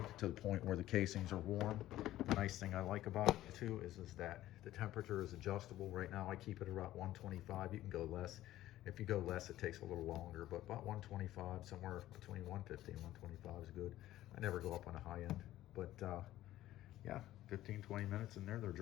to the point where the casings are warm. The nice thing I like about it too is that the temperature is adjustable. Right now I keep it around 125. You can go less. If you go less, it takes a little longer, but about 125, somewhere between 150 and 125 is good. I never go up on a high end, but yeah, 15-20 minutes in there, they're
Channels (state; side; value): quieter; right; 14.4 dB